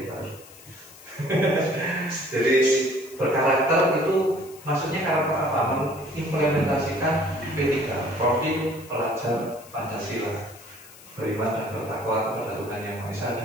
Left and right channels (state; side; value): noise; left; hiss, 20 dB below the sound